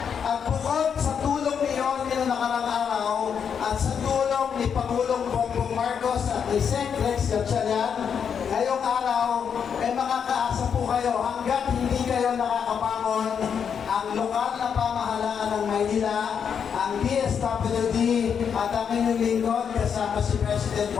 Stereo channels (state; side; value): quieter; right; 7.2 dB